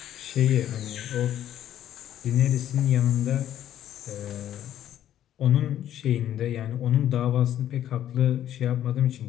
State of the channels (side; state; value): right; quieter; 11.4 dB